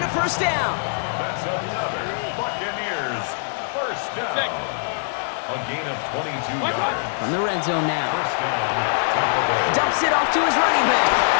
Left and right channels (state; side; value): silent; right; digital silence